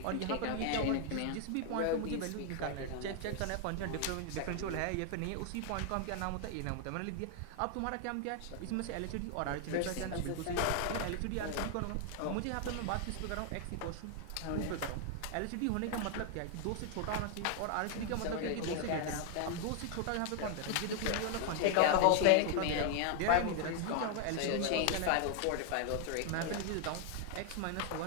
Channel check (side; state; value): both; different; correlation 0.00